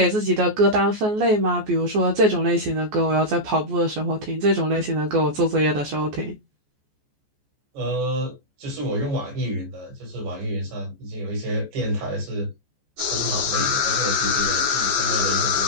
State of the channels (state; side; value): late; left; 14 ms